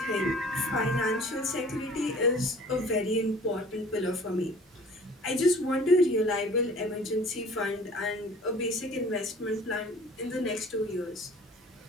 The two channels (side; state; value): both; normal; correlation 0.48